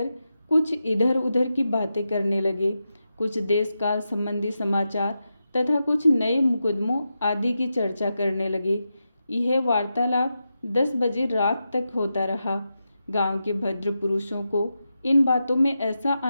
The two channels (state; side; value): inverted; both; correlation -0.89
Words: कुछ इधर उधर की बातें करने लगे। कुछ देश काल संबंधी समाचार तथा कुछ नए मुकदमों आदि की चर्चा करने लगे। यह वार्तालाप 10 बजे रात तक होता रहा। गांव के भद्र पुरुषों को इन बातों में ऐसा